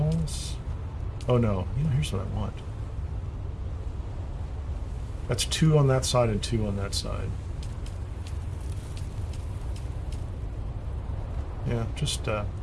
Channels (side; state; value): both; identical; correlation 1.00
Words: Oh no, here's what I want. That's 2 on that side and 2 on that side. Yeah, just